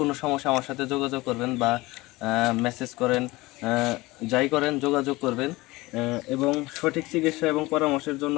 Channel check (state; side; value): quieter; right; 20.9 dB